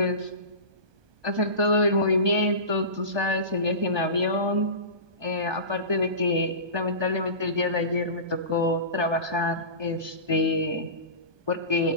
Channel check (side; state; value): left; late; 1.2 ms